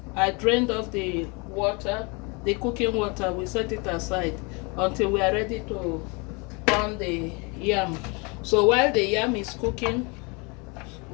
I drained off the water, the cooking water. We set it aside until we are ready to pound the yam. So while the yam is cooking,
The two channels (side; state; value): right; quieter; 30.0 dB